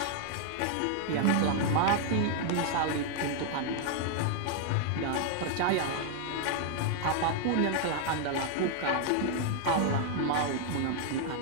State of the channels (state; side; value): different; both; correlation 0.00